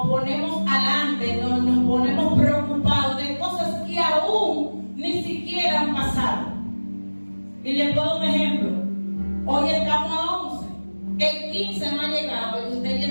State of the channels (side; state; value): both; inverted; correlation -1.00